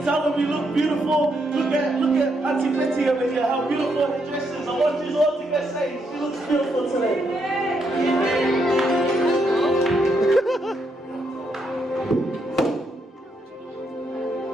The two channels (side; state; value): both; normal; correlation 0.78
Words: Tell them you look beautiful. Look at Auntie Betty over here. How beautiful her dress is. I want you all to get saved. She looks beautiful today.